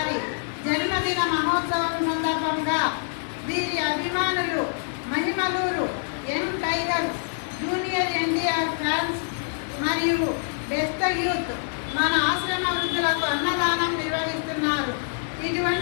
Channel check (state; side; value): silent; right; 61 dB below the other